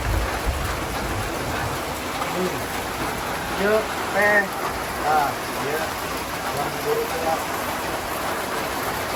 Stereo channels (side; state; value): both; identical; correlation 1.00